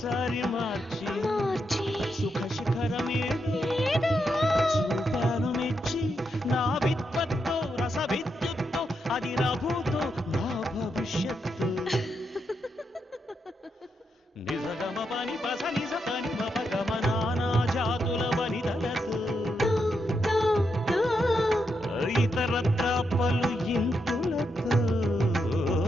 మార్చి సుఖ శిఖరమే చూపాను మెచ్చి నా విద్వత్తో రస విద్యుత్తో అది రఘుతో నా భవిష్యత్తు నిజగమ పని పస నిజ పని మపగమ నానా జాతుల వనితలతో ఇతరత్ర పలు ఇంతులతో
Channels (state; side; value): normal; both; correlation 0.83